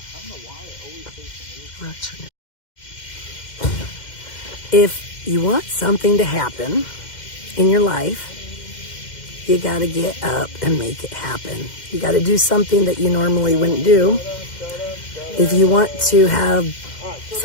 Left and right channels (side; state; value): right; late; 2.1 ms